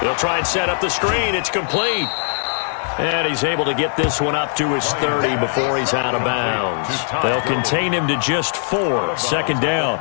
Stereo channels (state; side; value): silent; right; digital silence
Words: He'll try and set up the screen. It's complete. And he's able to get this one up to his 30 before he's out of bounds. They'll contain him to just 4. Second down.